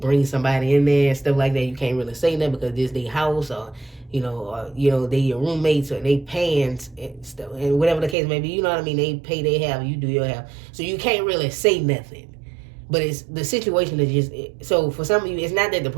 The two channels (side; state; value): left; drops out; at 8.2 s